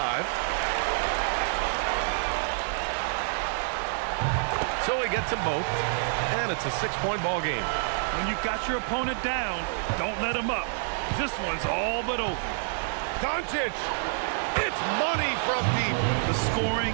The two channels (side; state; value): left; silent; 60 dB below the other